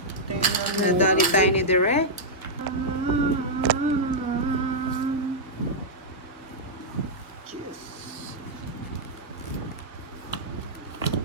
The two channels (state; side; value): normal; both; correlation -0.08